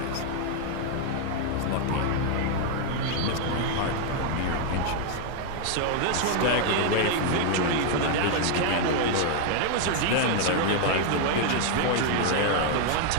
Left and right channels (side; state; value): both; different; correlation 0.00